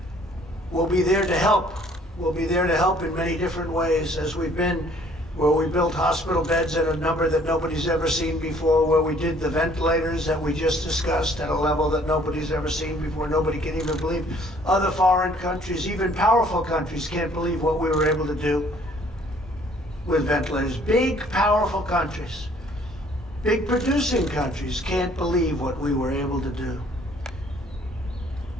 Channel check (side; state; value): both; normal; correlation 0.59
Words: we'll be there to help. We'll be there to help in many different ways, as we've been, where we built hospital beds at a number that nobody's ever seen before, where we did the ventilators that we just discussed at a level that nobody's ever seen before. Nobody can even believe. Other foreign countries, even powerful countries, can't believe what we were able to do with ventilators. Big, powerful countries, big producing countries can't believe what we were able to do.